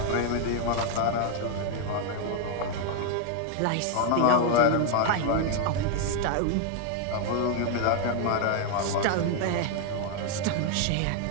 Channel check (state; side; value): different; both; correlation 0.00